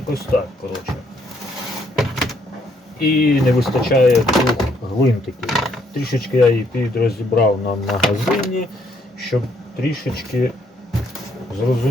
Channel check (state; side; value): normal; both; correlation 0.70